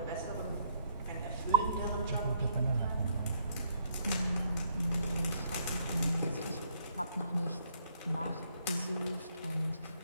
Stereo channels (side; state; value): both; inverted; correlation -0.68